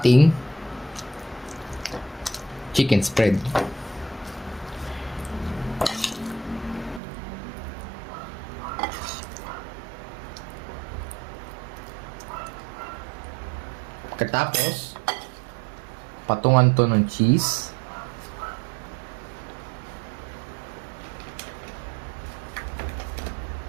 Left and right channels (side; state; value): left; drops out; at 7.0 s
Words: chicken spread. Pagkatapos, patungan to ng cheese.